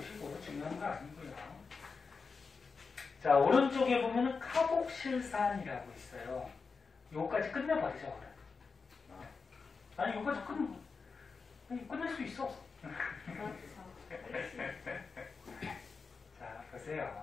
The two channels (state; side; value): quieter; right; 4.8 dB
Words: 중요한 거 아니고요. 자, 오른쪽에 보면은 카복실산이라고 있어요. 요거까지 끝내버리죠. 아니, 요거까지 끝낼 수 있어. 자,